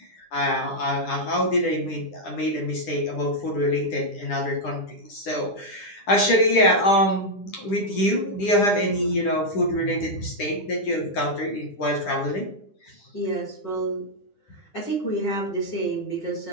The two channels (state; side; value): late; right; 9.9 ms